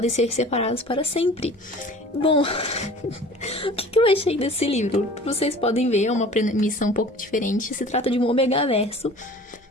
ser separados para sempre. Bom, o que eu achei desse livro? Vocês podem ver, é uma premissa um pouco diferente. Se trata de um Omegaverso.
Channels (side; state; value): both; normal; correlation 0.44